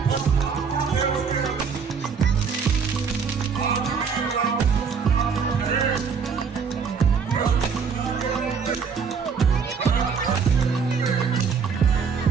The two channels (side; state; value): left; quieter; 6.0 dB